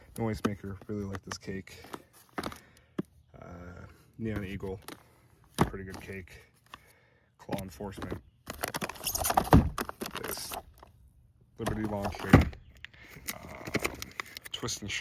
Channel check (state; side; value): identical; both; correlation 1.00